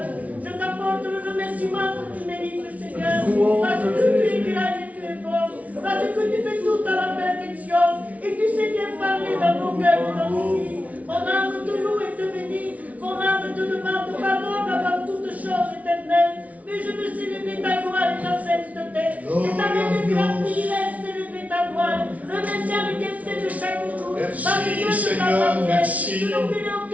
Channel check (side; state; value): left; late; 0.069 ms